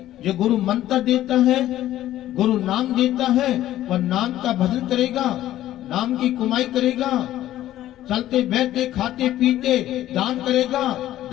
जो गुरु मंत्र देता है, गुरु नाम देता है, वह नाम का भजन करेगा, नाम की कमाई करेगा, चलते बैठते खाते पीते दान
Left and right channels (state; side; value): quieter; right; 13.5 dB